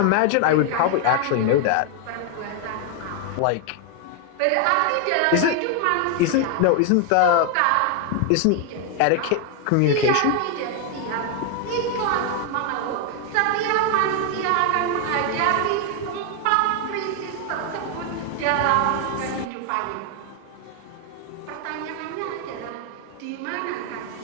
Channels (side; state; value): both; different; correlation 0.00